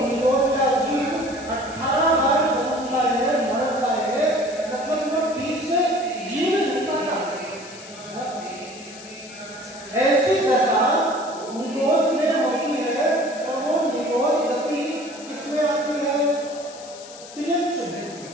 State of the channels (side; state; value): left; noise; hiss, 17 dB below the sound